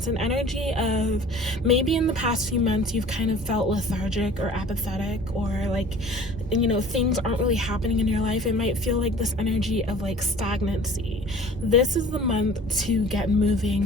an energy of maybe in the past few months you've kind of felt lethargic or apathetic, or like, things aren't really happening in your life. It might feel like this energy of like stagnancy. This is the month to get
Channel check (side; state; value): both; normal; correlation 0.46